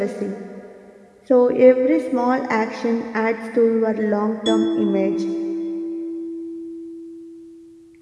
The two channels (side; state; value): both; identical; correlation 1.00